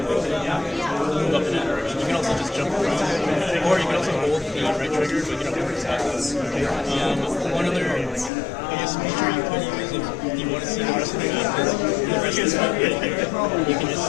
up in that direction. You can also just jump around, or you can also hold the right trigger, but you don't have to stop. One other, I guess, feature you could use if you want to see the rest of the map is the rest of the map right here. You can just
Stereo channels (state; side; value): drops out; right; at 8.3 s